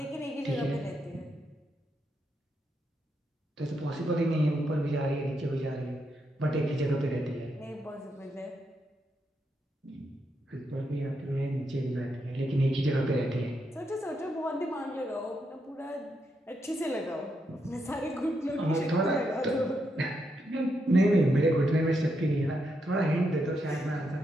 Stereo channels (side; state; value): both; normal; correlation 0.81